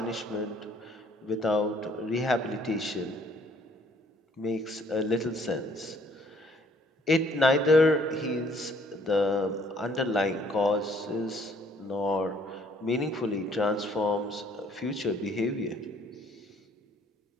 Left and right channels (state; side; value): normal; both; correlation 0.62